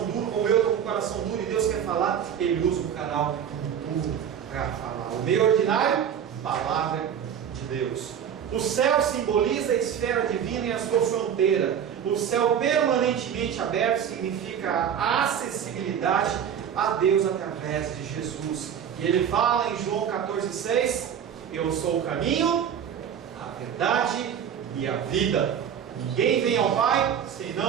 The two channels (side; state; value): left; quieter; 8.5 dB